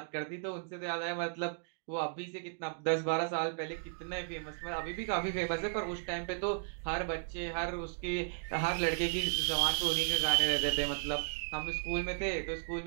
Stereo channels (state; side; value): silent; left; digital silence